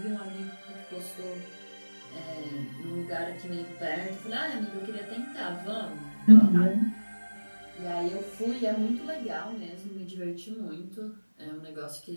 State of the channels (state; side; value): inverted; both; correlation -1.00